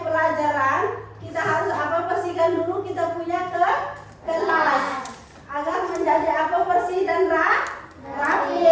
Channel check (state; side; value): identical; both; correlation 1.00